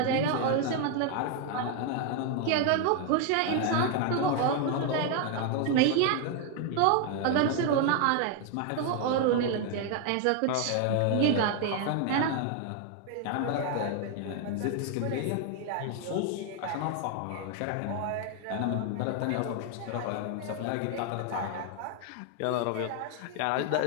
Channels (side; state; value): both; different; correlation 0.00